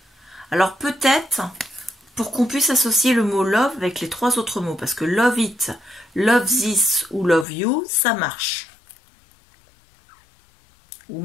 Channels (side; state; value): right; drops out; at 7.5 s